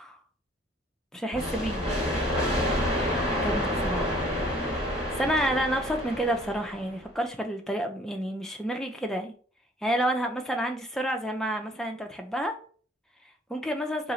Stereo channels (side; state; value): both; normal; correlation 0.58